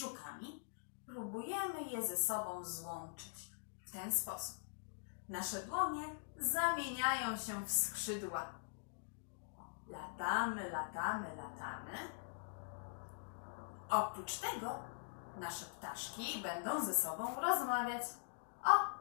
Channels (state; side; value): silent; right; digital silence